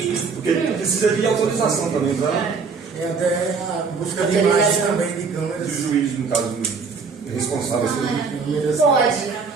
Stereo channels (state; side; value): quieter; left; 5.1 dB